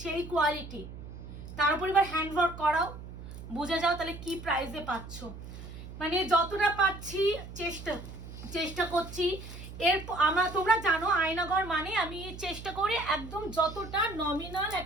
সেই কোয়ালিটি। তার উপর এবার হ্যান্ড ওয়ার্ক করাও, বুঝে যাও তাহলে কি প্রাইসে পাচ্ছ। মানে যতটা পাচ্ছি চেষ্টা করছি। তোমরা জানো আয়নাঘর মানে আমি চেষ্টা করি একদম যতটা নমিনাল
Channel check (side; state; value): right; noise; hum, 12 dB below the sound